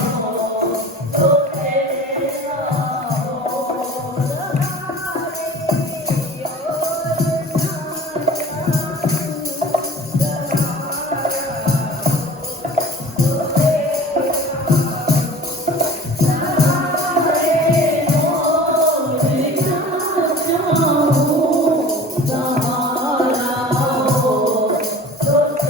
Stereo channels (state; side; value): normal; both; correlation 0.42